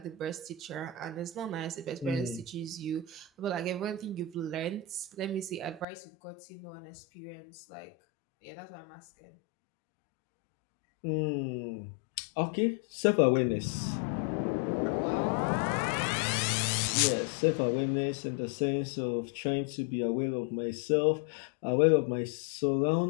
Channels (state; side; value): drops out; right; at 5.9 s